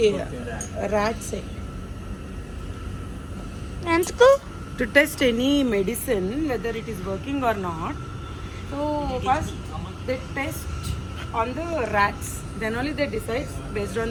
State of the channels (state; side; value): identical; both; correlation 1.00